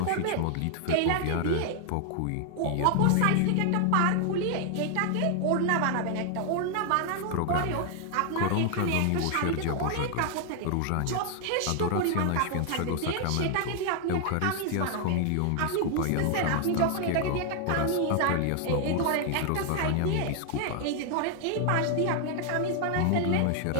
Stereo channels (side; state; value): both; different; correlation 0.00